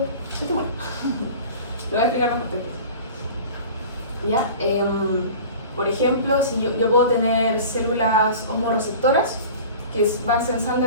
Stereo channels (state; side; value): inverted; both; correlation -0.39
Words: estimula. Lo voy a explicar mejor. ¿Ya? Por ejemplo, si yo puedo tener células osmorreceptoras que van sensando